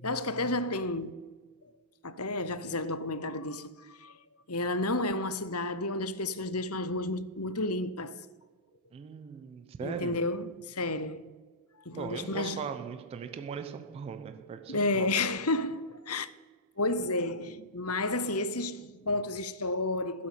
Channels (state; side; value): normal; both; correlation -0.20